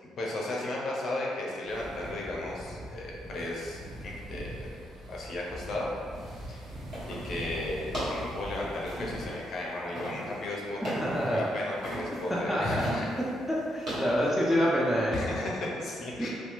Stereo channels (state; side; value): normal; both; correlation 0.80